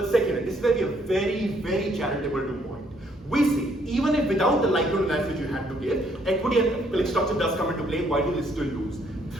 second, this is where we are very, very charitable to point. We say, even if without the likelihood analysis you had to give, equity and structure does come into play, why do they still lose?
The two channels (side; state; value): both; normal; correlation 0.68